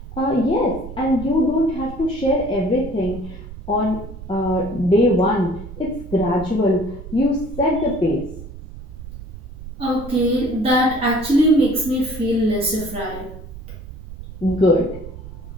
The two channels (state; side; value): noise; right; rumble, 13 dB below the sound